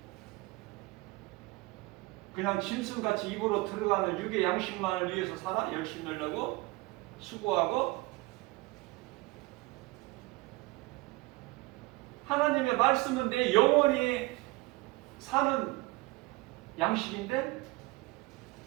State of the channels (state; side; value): quieter; left; 21.9 dB